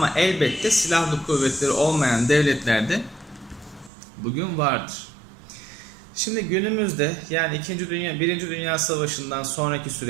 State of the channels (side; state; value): left; drops out; at 3.9 s